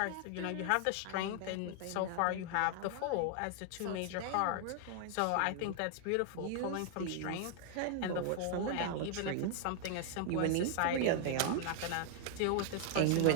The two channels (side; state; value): both; different; correlation 0.00